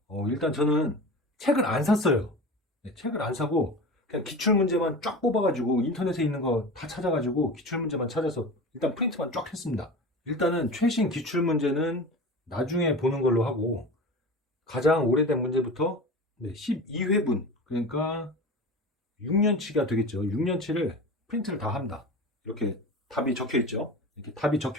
일단 저는 책을 안 샀어요. 네, 책을 안 사고 그냥 기출문제만 쫙 뽑아가지고 인터넷에 있는 거 다 찾아가지고 기출문제만 찾아서 일단 프린트만 쫙 했습니다. 일단은 최신 기출문제는 나중에 보는 걸로 하고 가장 오래된 문제부터 12회분 그러니까 6년치가 되겠죠. 6년치를 프린트를 다 합니다. 이렇게 답이 적혀 있죠. 이렇게 답이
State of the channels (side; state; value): both; normal; correlation 0.32